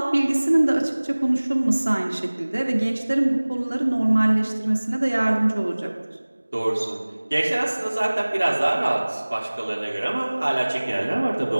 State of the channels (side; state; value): both; inverted; correlation -1.00